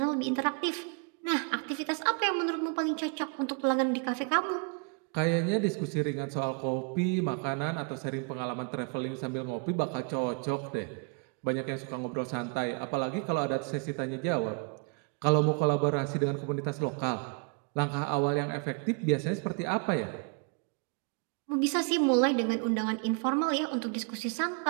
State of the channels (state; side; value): quieter; left; 35.3 dB